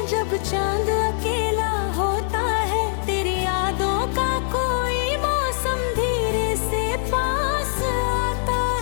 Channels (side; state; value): right; silent; digital silence